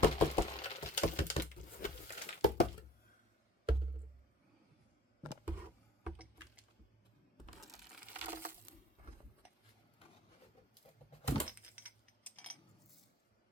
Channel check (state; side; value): normal; both; correlation 0.50